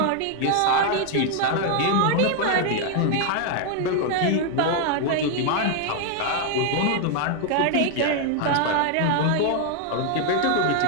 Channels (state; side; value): different; both; correlation 0.00